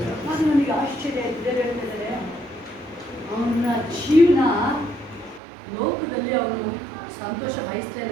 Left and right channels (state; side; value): drops out; left; at 5.4 s